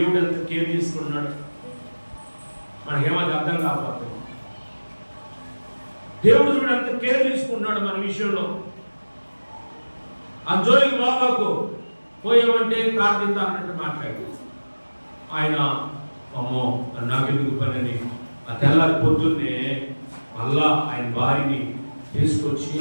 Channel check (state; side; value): inverted; both; correlation -1.00